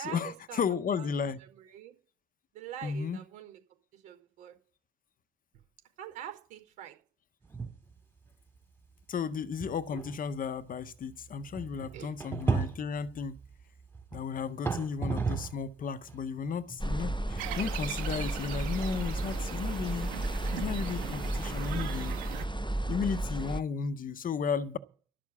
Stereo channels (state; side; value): normal; both; correlation 0.63